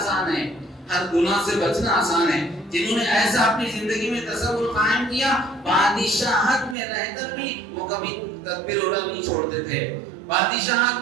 ہے، ہر گناہ سے بچنا آسان ہے. جنہوں نے ایسا اپنی زندگی میں تصور قائم کیا، بادشاہت میں رہ کر بھی وہ کبھی تکبیر اولیٰ نہیں چھوڑتے تھے،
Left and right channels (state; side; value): drops out; left; at 6.8 s